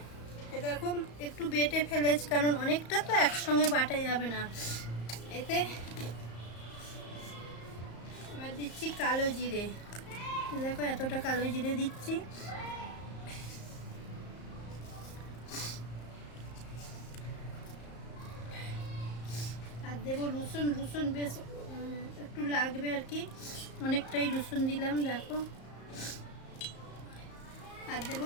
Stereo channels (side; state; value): right; late; 34 ms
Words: এটা দেখো একটু বেটে ফেলেছি, কারণ অনেকটা তো একসঙ্গে বাটা যাবে না। এতে এবার দিচ্ছি কালো জিরে, দেখো এতটা কালো জিরে দিচ্ছি। আর দেবো রসুন, রসুন বেশ একটু লাগবে আর কি, অনেকটাই রসুন দিলাম দেখো। আর